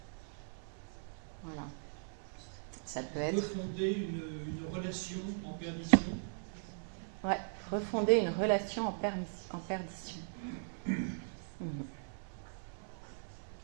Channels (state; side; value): silent; left; 52 dB below the other